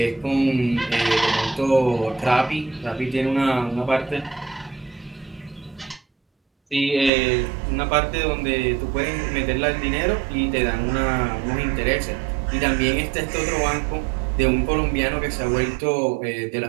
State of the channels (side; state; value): left; drops out; at 7.1 s